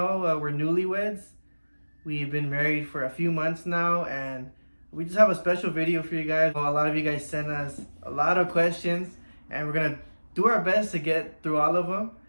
we're newlyweds. We've been married for a few months now, and we just have a special video for you guys. A lot of you guys sent us a lot of questions, and we're gonna do our best to get through all of them.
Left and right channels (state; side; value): inverted; both; correlation -1.00